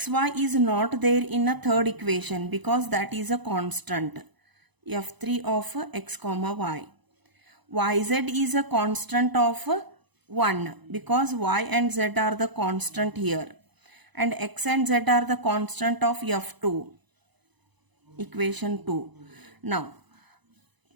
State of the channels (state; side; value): late; left; 1.0 ms